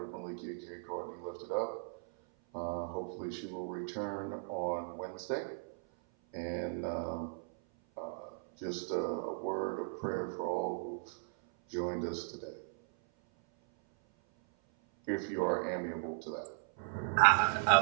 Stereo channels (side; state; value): left; silent; 53 dB below the other